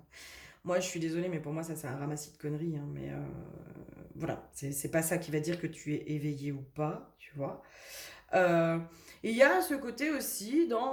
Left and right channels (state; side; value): identical; both; correlation 1.00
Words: Moi, je suis désolée, mais pour moi, ça, c'est un ramassis de conneries, hein, mais voilà, c'est pas ça qui va dire que tu es éveillé ou pas, tu vois. Euh, et il y a ce côté aussi